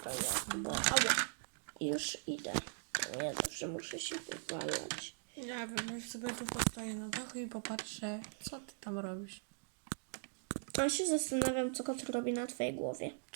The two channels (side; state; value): left; silent; digital silence